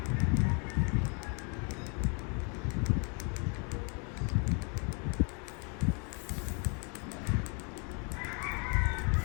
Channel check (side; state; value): right; quieter; 36.0 dB